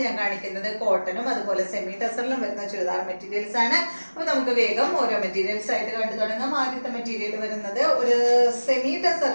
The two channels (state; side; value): inverted; both; correlation -1.00